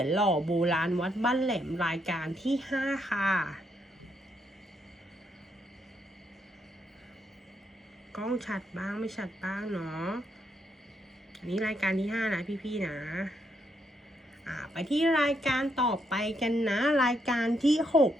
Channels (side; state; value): both; normal; correlation 0.77